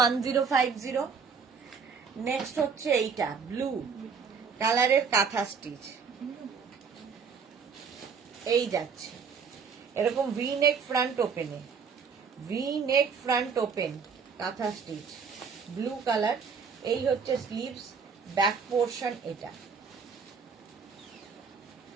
নেক্সট হচ্ছে এইটা ব্লু কালারের কাঁথা স্টিচ, এই যাচ্ছে এরকম ভি নেক ফ্রন্ট ওপেনে, ভি নেক ফ্রন্ট ওপেন কাঁথা স্টিচ ব্লু কালার। এই হচ্ছে স্লিভস, ব্যাক পোর্শন এটা,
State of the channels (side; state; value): left; quieter; 5.8 dB